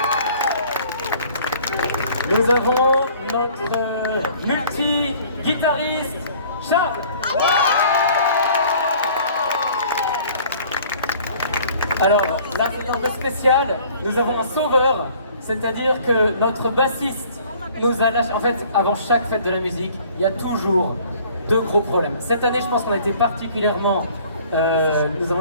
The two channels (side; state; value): both; inverted; correlation -0.53